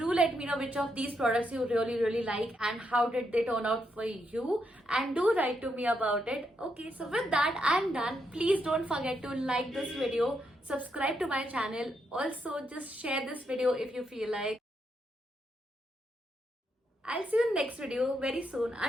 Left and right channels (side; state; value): both; normal; correlation 0.80